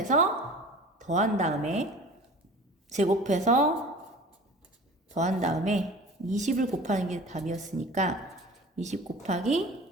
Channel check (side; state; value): both; normal; correlation 0.41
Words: 더한 다음에 20을 곱하는 게 답이었으니까 20